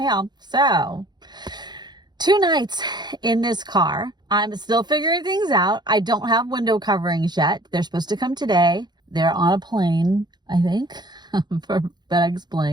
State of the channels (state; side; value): late; left; 0.21 ms